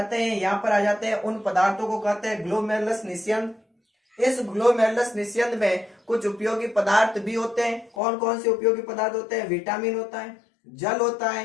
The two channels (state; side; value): drops out; right; at 8.0 s